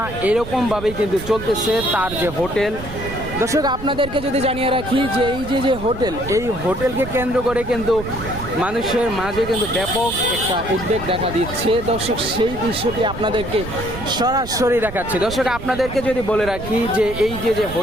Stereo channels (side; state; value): right; noise; rumble, 11 dB below the sound